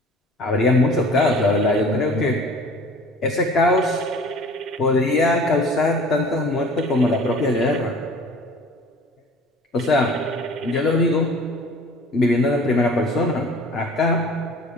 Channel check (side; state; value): both; normal; correlation 0.45